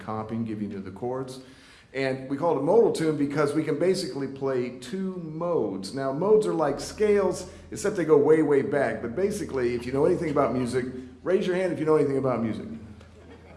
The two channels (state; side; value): identical; both; correlation 1.00